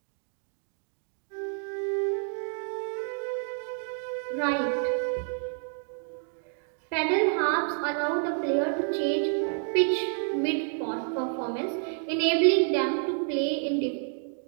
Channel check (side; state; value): left; silent; 59 dB below the other